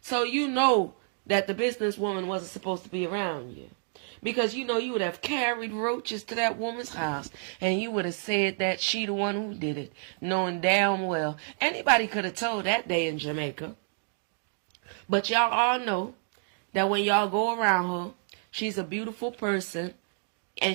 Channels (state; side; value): silent; left; 56 dB below the other